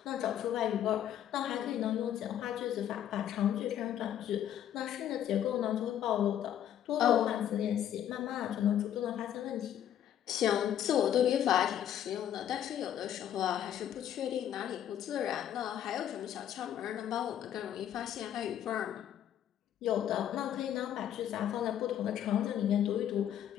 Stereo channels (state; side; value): quieter; right; 10.5 dB